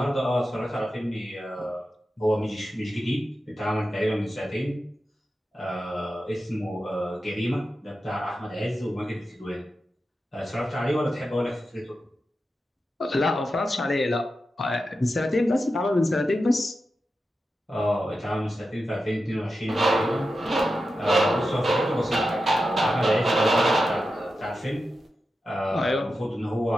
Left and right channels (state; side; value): normal; both; correlation 0.90